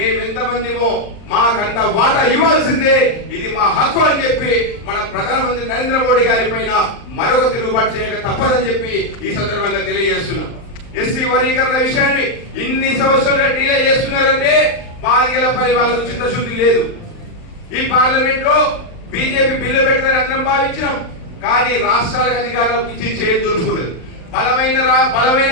మాకంత వాటా ఇవ్వాల్సిందే, ఇది మా హక్కు అని చెప్పి మన ప్రధానమంత్రి నరేంద్ర మోడీ గారి పైన మరొక తిరుగుబాటు చేయక తప్పదని చెప్పి ఈ సందర్భంగా తెలియజేస్తున్నాం. ఎస్సీ వర్గీకరణ విషయాన్ని ఇన్ని సంవత్సరాలుగా డీలే చేస్తున్నారంటే మాదిగలపై వాళ్ళకు చిత్తశుద్ధి లేదు. ఈ పార్లమెంట్ లో బీజేపీ బిల్లు పెట్టదని అందరం భావించినాం, కానీ రాష్ట్రాలకు అధికారం ఇచ్చి చేయి దొరుకుతున్నది. బలమైన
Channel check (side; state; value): right; late; 39 ms